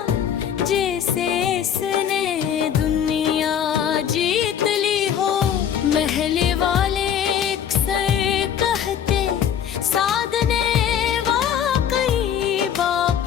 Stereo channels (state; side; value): quieter; right; 8.9 dB